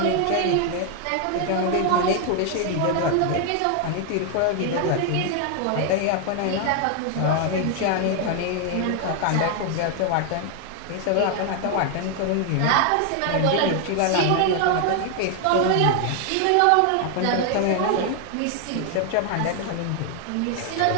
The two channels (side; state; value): both; different; correlation 0.00